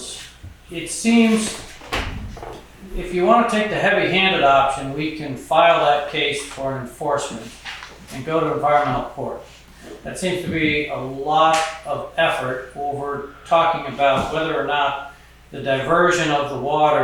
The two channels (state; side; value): identical; both; correlation 1.00